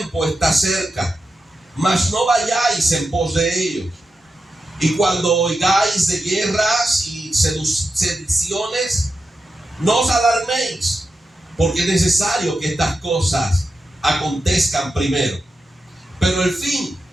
está cerca. Mas no vayáis en pos de ellos. Y cuando oigáis de guerras y sediciones, no os alarméis, porque es necesario que estas cosas acontezcan primero, pero el fin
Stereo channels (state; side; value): normal; both; correlation 0.89